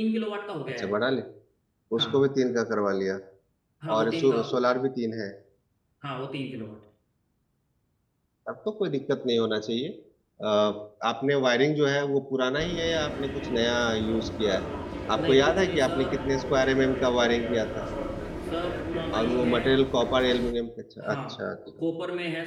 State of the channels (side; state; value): both; identical; correlation 1.00